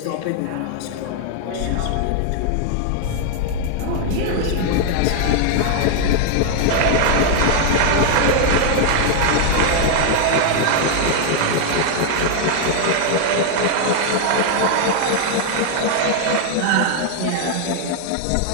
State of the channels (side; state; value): both; different; correlation 0.00